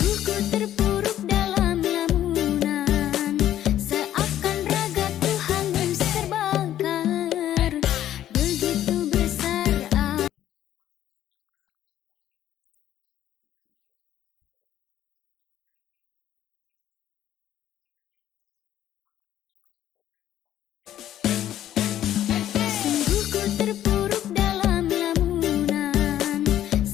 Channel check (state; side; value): quieter; right; 11.9 dB